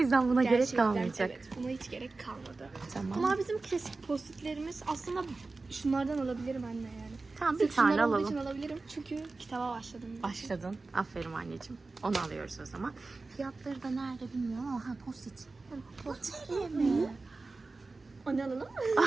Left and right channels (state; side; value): quieter; left; 3.6 dB